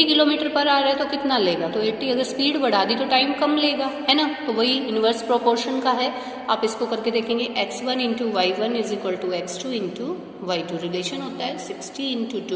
किलोमीटर पर आवर है तो कितना लेगा, तो 80 अगर स्पीड बढ़ा दी तो टाइम कम लेगा, है ना। तो वही इन्वर्स प्रोपोर्शन का है, आप इसको करके देखेंगे, x1 into y1 is equal to x2 into y2, relation होता है 60 into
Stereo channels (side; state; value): both; identical; correlation 1.00